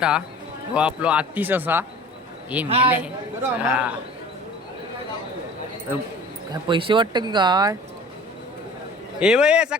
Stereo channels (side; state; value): both; normal; correlation 0.44